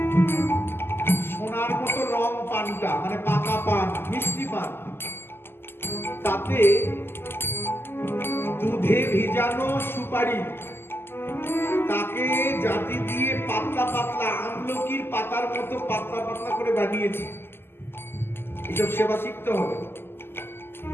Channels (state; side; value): late; right; 0.11 ms